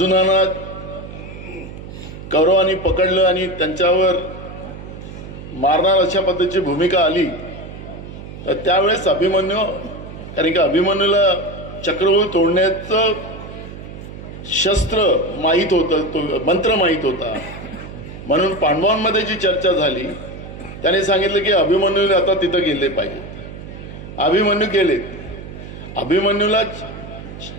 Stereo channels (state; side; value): noise; right; hum, 12 dB below the sound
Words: कौरवांनी पकडलं आणि त्यांच्यावर मारणार अशा पद्धतीची भूमिका आली, तर त्यावेळेस अभिमन्यू, कारण की अभिमन्यूला चक्रव्यूह तोडण्याचं शस्त्र माहीत होतं, तो मंत्र माहीत होता, म्हणून पांडवांमध्ये जी चर्चा झाली त्याने सांगितलं की अभिमन्यूने आता तिथं गेले पाहिजे. अभिमन्यू गेले. अभिमन्यूला